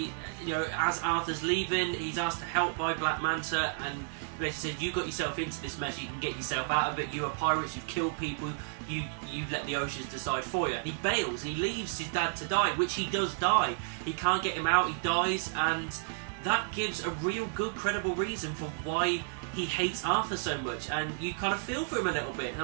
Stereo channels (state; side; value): silent; left; digital silence